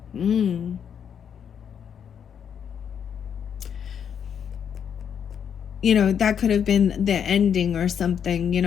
You know, that could have been the ending or something, you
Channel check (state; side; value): quieter; right; 8.0 dB